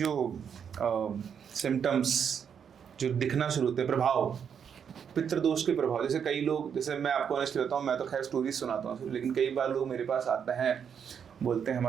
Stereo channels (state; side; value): quieter; left; 7.5 dB